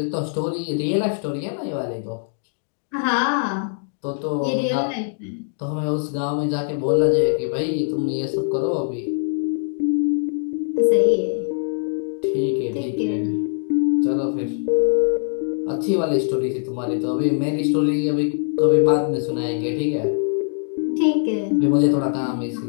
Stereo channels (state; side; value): silent; right; digital silence